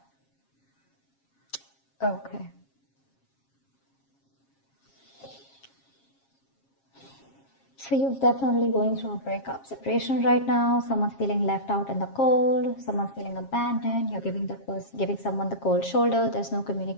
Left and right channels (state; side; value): late; right; 7.4 ms